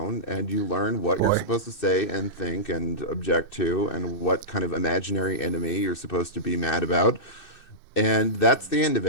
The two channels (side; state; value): right; late; 2.6 ms